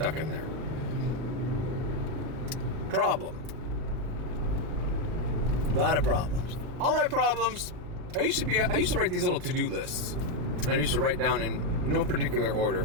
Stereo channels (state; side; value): late; left; 38 ms